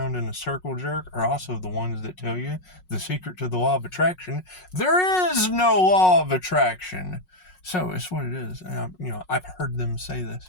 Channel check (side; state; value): right; late; 5.5 ms